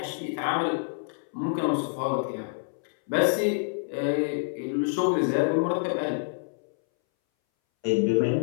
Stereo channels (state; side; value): silent; right; 60 dB below the other